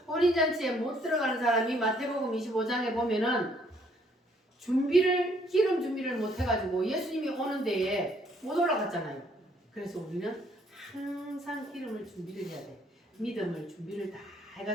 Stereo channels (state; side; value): normal; both; correlation 0.66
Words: 혼인잔치에 못 들어가는 사람이 마태복음 25장에 보면은 기름 준비를 못 해가지고 예수님이 오는 데에 못 올라갔잖아요. 그래서 우리는 항상 기름을 준비를 해야 돼. 믿음을 준비를 다